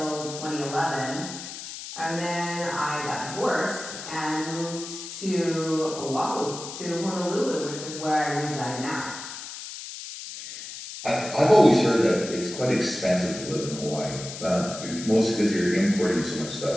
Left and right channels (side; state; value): left; noise; hiss, 10 dB below the sound